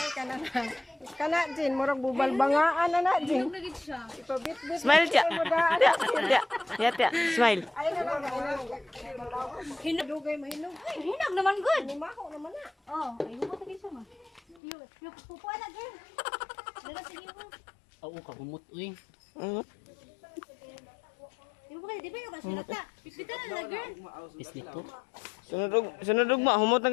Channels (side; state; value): right; drops out; at 14.6 s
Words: kana na. Kana Jin, murag bubal bangaan na Jin. Nagit siya. Ipabit-bit. Smile tiya. Tiya. Smile. Ay, na lang. Hinagugay mahinog. Ay, hinag naman good. Himaho naman na. Oh, ay humot lagi siya ma. Yung pupuan na girl. Dala sige mo. Oo, kahumot uy. Di ba di ba yung kasulata? Pipitan na girl. Pislito. Sunod ugma, humot na